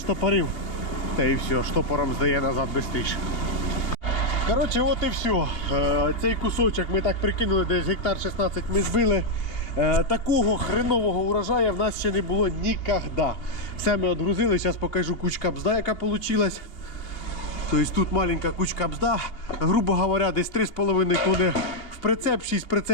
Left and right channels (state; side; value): late; right; 2.8 ms